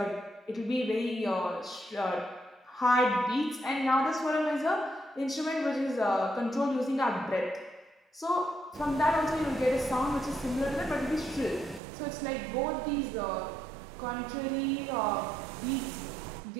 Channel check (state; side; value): drops out; left; at 11.8 s